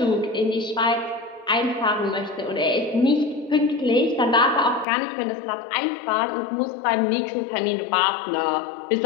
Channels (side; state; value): right; drops out; at 4.9 s